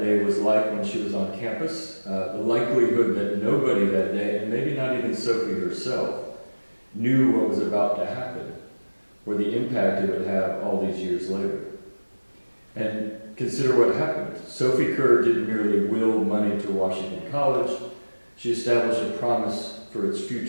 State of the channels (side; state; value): both; inverted; correlation -1.00